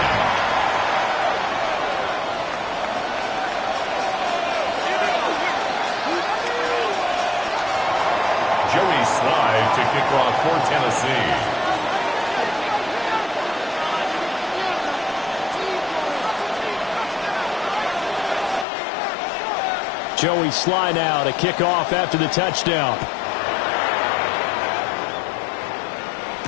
Joey Slide to kick off for Tennessee. Joey Sly now to kick off after the touchdown.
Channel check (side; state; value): right; drops out; at 18.7 s